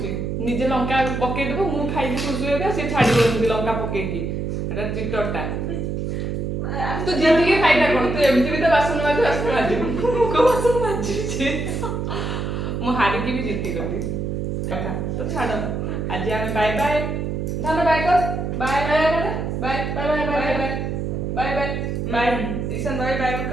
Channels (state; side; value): noise; right; hum, 2 dB below the sound